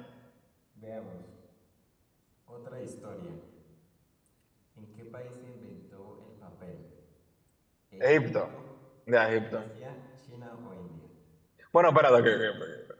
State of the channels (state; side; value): identical; both; correlation 1.00